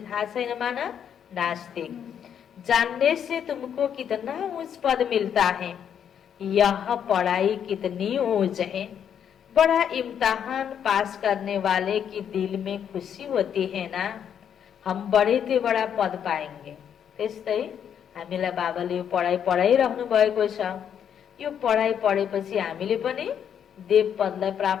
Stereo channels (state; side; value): quieter; right; 8.6 dB